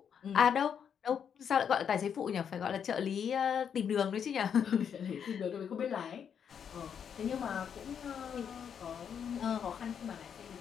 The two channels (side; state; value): right; quieter; 7.8 dB